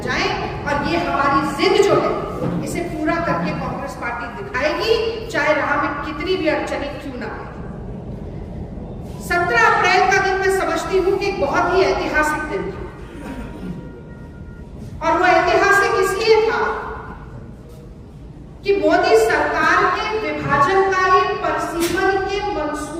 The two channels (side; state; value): both; identical; correlation 1.00